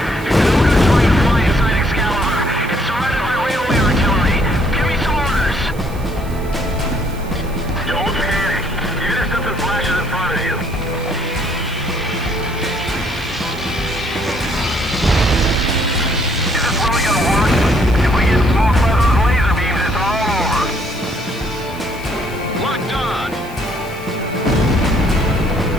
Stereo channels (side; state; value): right; noise; hiss, 21 dB below the sound